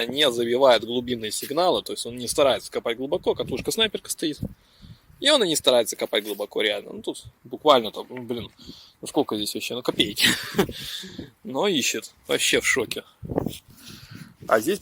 не забивает глубинные сигналы. То есть, он не старается копать глубоко. Катушка снайперка стоит. И он и не старается копать глубоко, реально. Ну, тут буквально там, ну, блин, ну сколько здесь вообще? Ну, копейки. Но ищет. Вообще в шоке. А здесь,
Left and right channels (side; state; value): both; identical; correlation 1.00